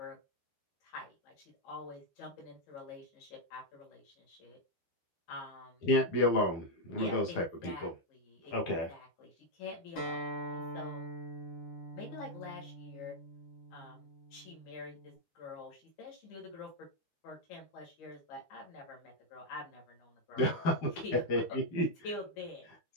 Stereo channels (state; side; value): late; right; 12 ms